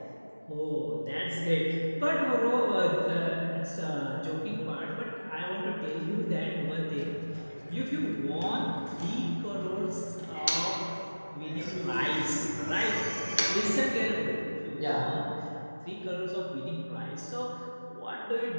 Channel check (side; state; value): both; inverted; correlation -1.00